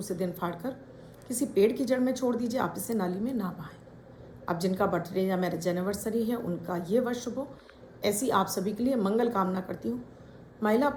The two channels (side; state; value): both; identical; correlation 1.00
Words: दिन फाड़ कर किसी पेड़ की जड़ में छोड़ दीजिए। आप इसे नाली में ना बहाएं। अब जिनका बर्थडे या मैरिज एनिवर्सरी है उनका ये वर्ष शुभ हो, ऐसी आप सभी के लिए मंगल कामना करती हूँ। महिला